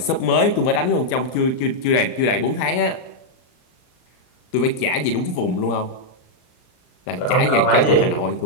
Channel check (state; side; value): late; right; 39 ms